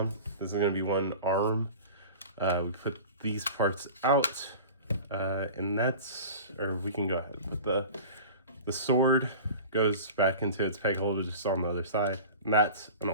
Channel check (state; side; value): inverted; both; correlation -0.37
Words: This is going to be one arm. We put these parts out, and we can go ahead. But the sword goes back into its peg holder just on the other side, and that's an